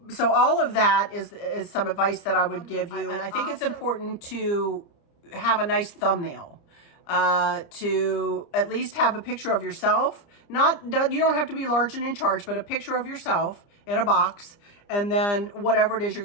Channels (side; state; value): right; late; 29 ms